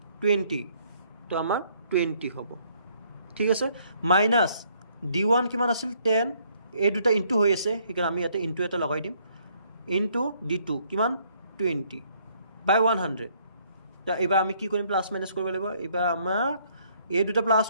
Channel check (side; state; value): both; inverted; correlation -0.66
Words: 20 তো আমাৰ 20 হ'ব ঠিক আছে মাইনাস d1 কিমান আছিল 10 এই দুটা ইনটু হৈ আছে সেইকাৰণে আমি ইয়াতে ইনটু এটা লগাই দিম ইনটু d2 কিমান 20 by 100 তো এবাৰ আমি কি কৰিম প্লাস মাইনাস কৰিব লাগিব এবাৰ আমাৰ এই দুটা প্লাস